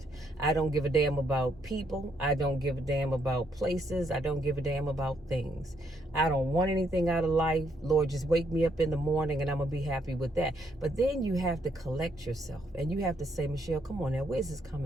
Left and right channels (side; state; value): both; normal; correlation 0.73